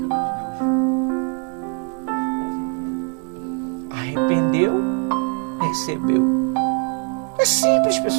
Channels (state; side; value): quieter; left; 38.3 dB